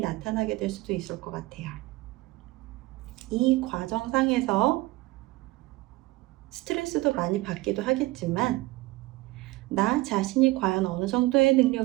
나타나게 될 수도 있을 것 같아요. 이 과정상에서 스트레스도 많이 받기도 하겠지만 나 자신이 과연 어느 정도의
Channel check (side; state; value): left; quieter; 19.9 dB